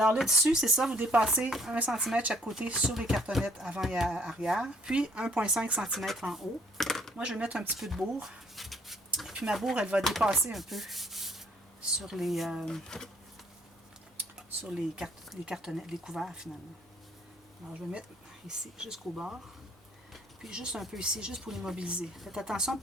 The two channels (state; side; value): normal; both; correlation 0.62